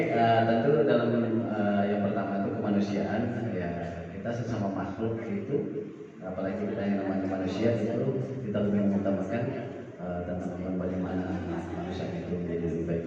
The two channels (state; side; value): identical; both; correlation 1.00